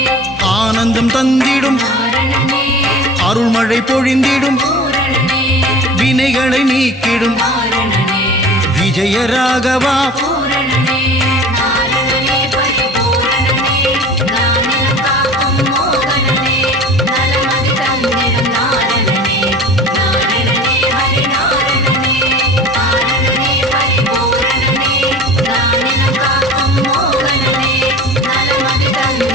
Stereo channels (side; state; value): both; normal; correlation 0.39